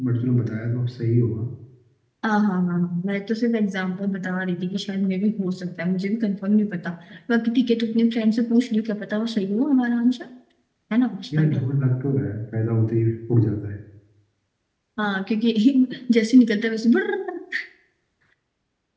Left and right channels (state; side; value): identical; both; correlation 1.00